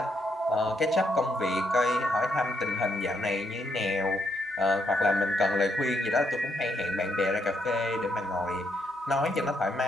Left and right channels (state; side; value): normal; both; correlation 0.76